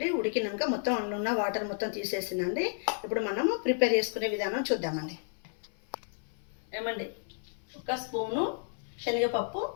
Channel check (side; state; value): right; silent; 57 dB below the other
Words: ఉడికినాక మొత్తం అందులో ఉన్న వాటర్ మొత్తం తీసేసినండి. ఇప్పుడు మనము ప్రిపేర్ చేసుకునే విధానం చూద్దామండి. ఏమండి, ఒక స్పూను శనగపప్పు,